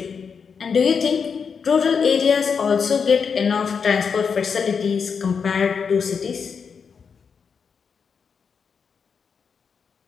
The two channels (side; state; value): right; quieter; 6.1 dB